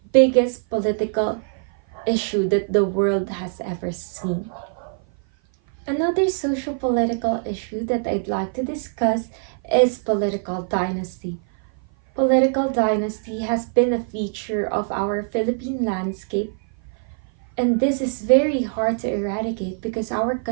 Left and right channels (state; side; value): silent; left; 55 dB below the other